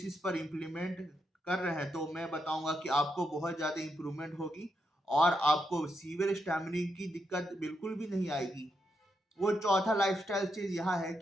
पर इम्प्लीमेंट कर रहे हैं तो मैं बताऊंगा कि आपको बहुत ज़्यादा इम्प्रूवमेंट होगी और आपको सीवियर स्टैमिनिंग की दिक्कत बिल्कुल भी नहीं आएगी। वो चौथा लाइफस्टाइल चेंज यह है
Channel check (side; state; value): both; normal; correlation 0.82